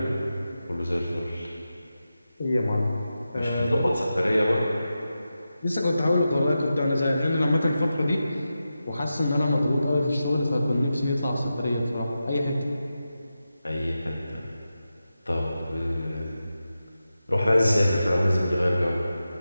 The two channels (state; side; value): inverted; both; correlation -0.91